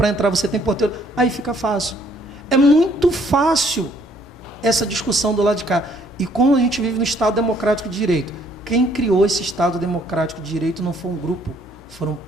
entrar você tem porteiro. Aí fica fácil. É muito fácil essa discussão do lado de cá. E como a gente vive no Estado Democrático de Direito, quem criou esse Estado Democrático de Direito não foi um grupo, foram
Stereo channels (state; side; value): normal; both; correlation 0.64